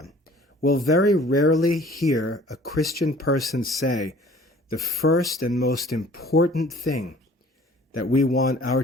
We'll very rarely hear a Christian person say, the first and most important thing that we want our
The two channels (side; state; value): both; normal; correlation 0.51